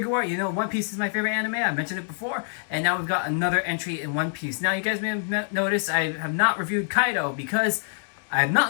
art. You know, One Piece is my favorite anime. I mentioned it before, and now we've got another entry in One Piece. Now, you guys may have noticed I have not reviewed Kaido because I have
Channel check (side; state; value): right; silent; digital silence